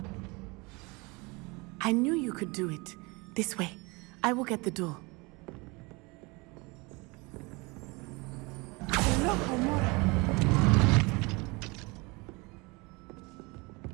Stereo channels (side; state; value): left; quieter; 26.3 dB